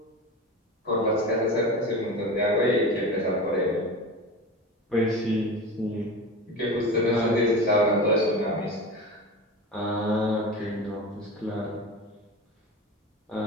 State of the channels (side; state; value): both; normal; correlation 0.29